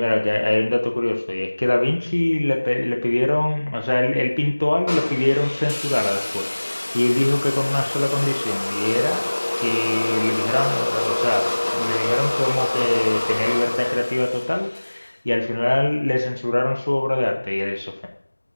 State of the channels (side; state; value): both; inverted; correlation -1.00